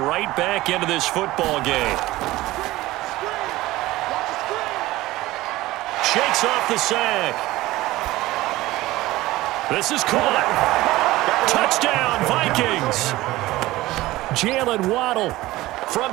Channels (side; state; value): left; quieter; 17.8 dB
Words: back into this football game. Shakes off the sack. This is caught. Touchdown, Vikings. Jalen Waddle from